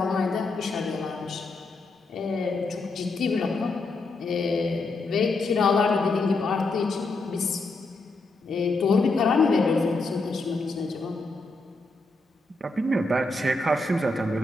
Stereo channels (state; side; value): quieter; right; 3.3 dB